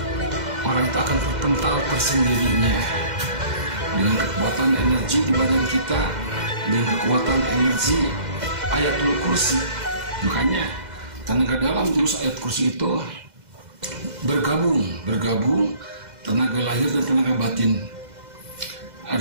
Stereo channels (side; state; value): left; late; 2.0 ms